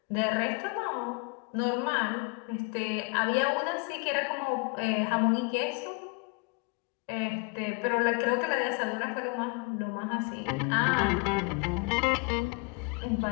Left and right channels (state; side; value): quieter; right; 30.9 dB